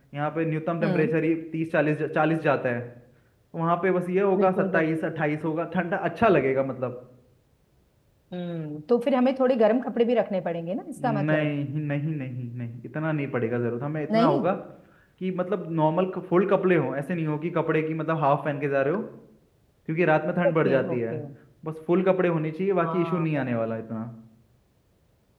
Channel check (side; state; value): both; identical; correlation 1.00